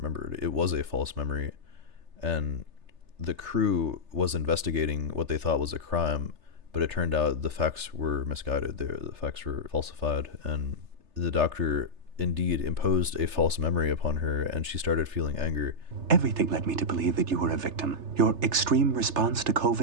It was a false memory, and the crew was investigating what they thought was a crime, but it turned out the facts were misguided. The facts were falsified, and the doctor indeed imposed a false memory upon her, and she started feeling anger. Everything led me to believe that you were a victim. Your extreme response to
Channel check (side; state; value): left; late; 3.3 ms